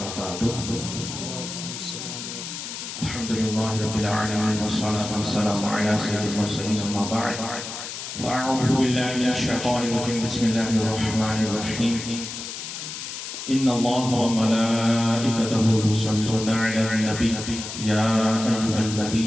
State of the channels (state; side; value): noise; left; hiss, 8 dB below the sound